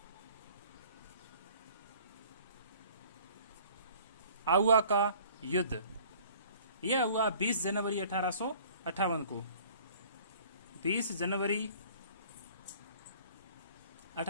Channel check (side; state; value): both; inverted; correlation -0.52